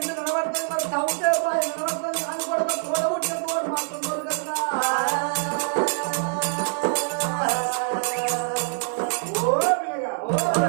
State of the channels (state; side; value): silent; left; 62 dB below the other